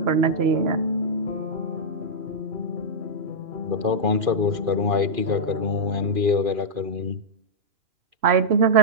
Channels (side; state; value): left; late; 2.4 ms